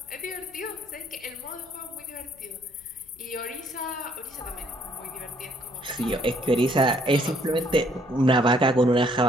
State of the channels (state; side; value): noise; left; rumble, 29 dB below the sound